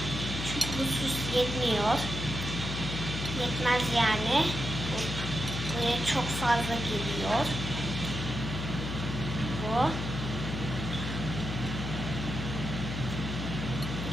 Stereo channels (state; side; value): noise; left; hum, 4 dB below the sound